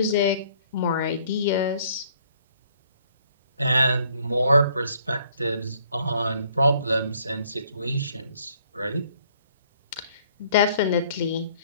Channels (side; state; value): both; inverted; correlation -0.63